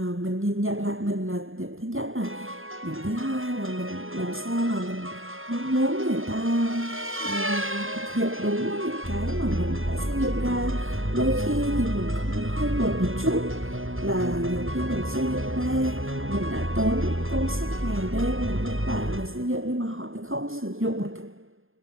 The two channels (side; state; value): left; late; 0.60 ms